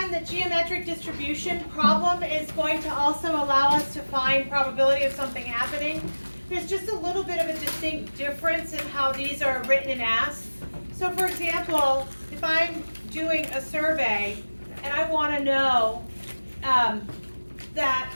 the geometric distribution problem is going to also allow us to find probability of something happening. There's just a little bit of a distinct difference in how these are written and asked. So for example, if I'm doing a survey and I want to know that,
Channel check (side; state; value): both; inverted; correlation -1.00